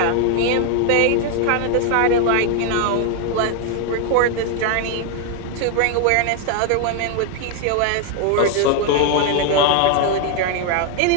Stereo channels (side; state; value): both; different; correlation 0.01